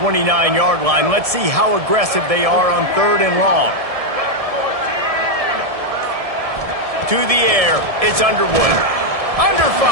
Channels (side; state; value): left; late; 1.7 ms